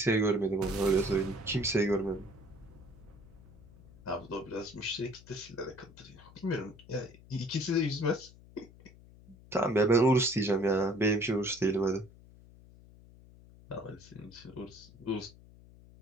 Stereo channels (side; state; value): left; noise; hum, 22 dB below the sound